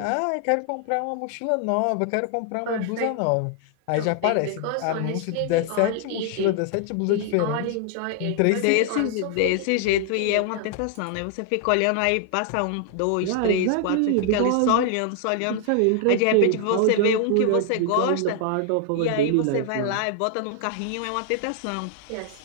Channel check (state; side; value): different; both; correlation 0.00